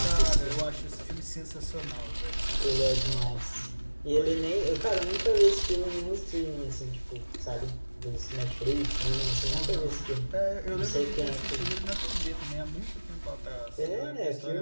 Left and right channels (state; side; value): inverted; both; correlation -1.00